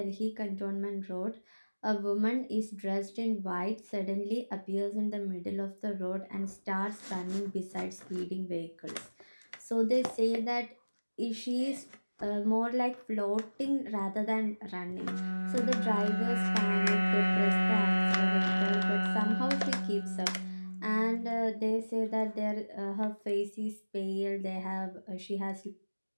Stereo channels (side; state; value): both; inverted; correlation -1.00